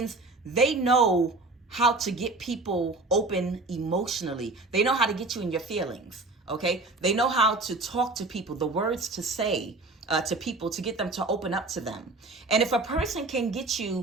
they know how to get people open emotionally. They know how to get you in your feelings, okay? They know how to talk to people, the words to say to people to get them to open up to them. And if a person can get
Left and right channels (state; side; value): quieter; left; 3.2 dB